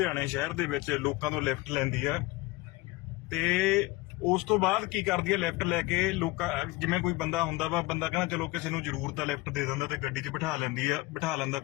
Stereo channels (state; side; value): quieter; right; 20.6 dB